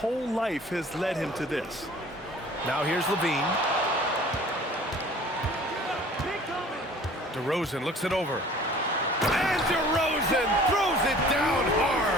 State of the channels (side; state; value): both; normal; correlation 0.48